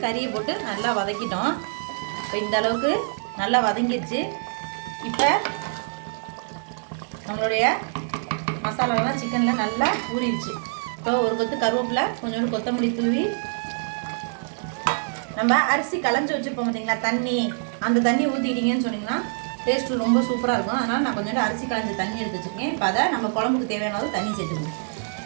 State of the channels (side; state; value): left; silent; digital silence